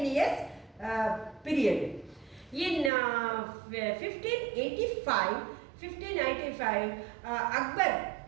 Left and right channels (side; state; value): left; drops out; at 2.9 s